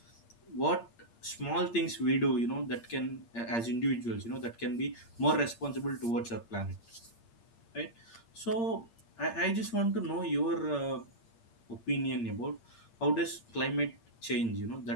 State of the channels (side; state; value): right; late; 8.7 ms